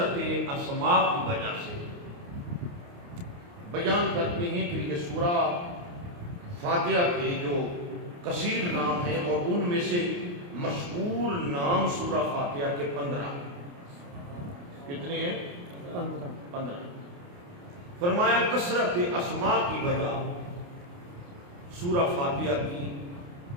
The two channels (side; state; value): left; late; 29 ms